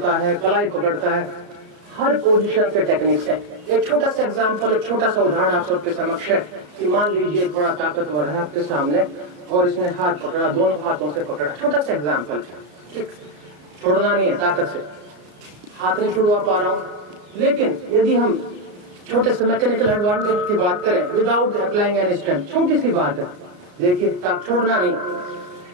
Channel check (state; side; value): late; left; 34 ms